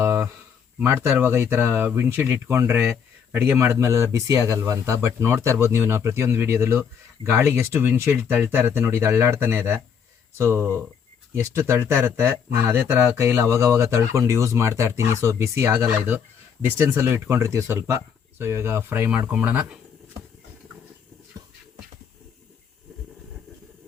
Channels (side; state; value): right; quieter; 7.1 dB